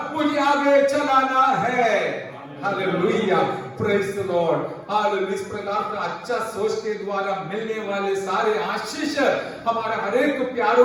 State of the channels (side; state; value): both; identical; correlation 1.00